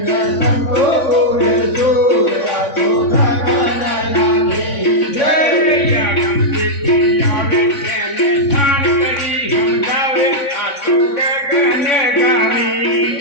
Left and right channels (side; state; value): right; late; 3.6 ms